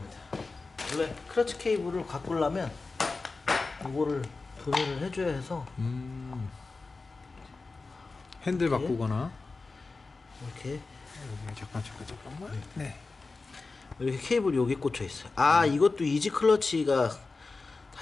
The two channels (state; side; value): quieter; right; 3.8 dB